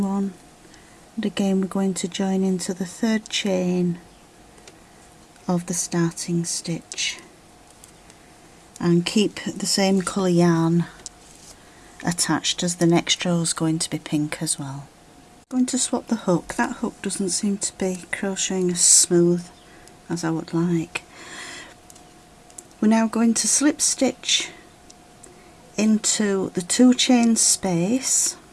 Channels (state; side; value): identical; both; correlation 1.00